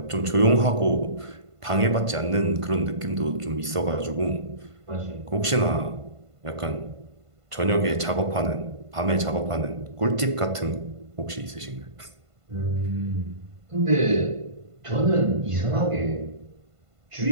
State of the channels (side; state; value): left; late; 1.5 ms